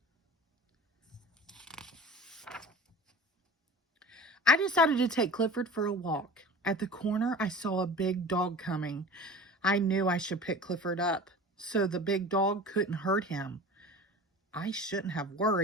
I decided to take Clifford for a walk. At the corner, I saw a big dog coming. I knew I should pick Clifford up so the big dog couldn't hurt him. I shouldn't have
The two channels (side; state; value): both; normal; correlation 0.38